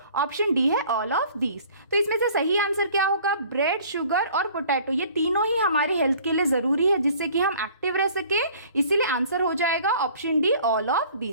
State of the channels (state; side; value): inverted; both; correlation -0.51